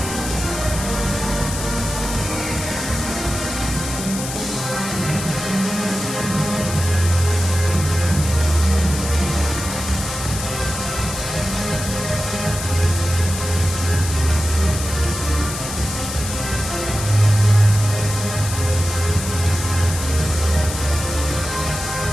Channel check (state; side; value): noise; left; hiss, 7 dB below the sound